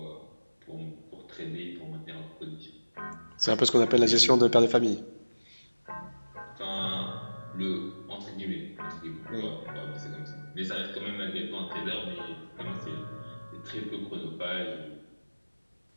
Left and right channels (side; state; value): both; inverted; correlation -1.00